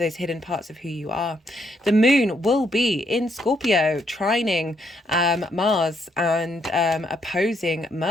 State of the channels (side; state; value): both; normal; correlation 0.74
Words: hidden parts of who you are. The moon will be in Scorpio, trining Mars and opposing